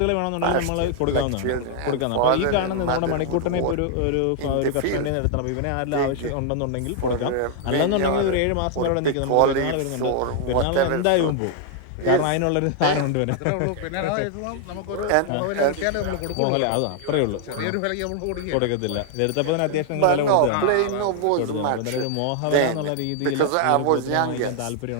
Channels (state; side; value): different; both; correlation 0.00